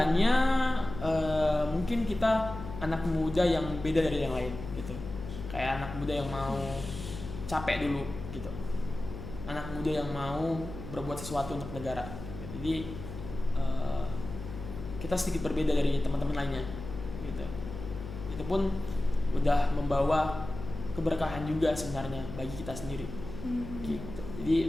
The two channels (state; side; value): noise; left; hum, 10 dB below the sound